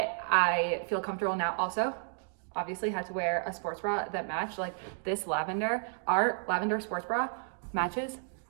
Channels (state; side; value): silent; left; digital silence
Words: I feel comfortable now. Also, obviously had to wear a sports bra that matched, like this lavender. Our lavender sports bra matches